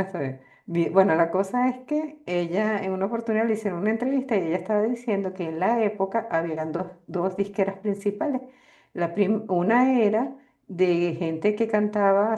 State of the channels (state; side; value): identical; both; correlation 1.00